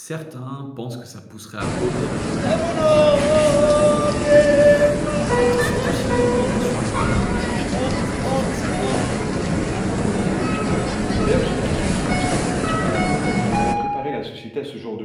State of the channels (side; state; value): both; identical; correlation 1.00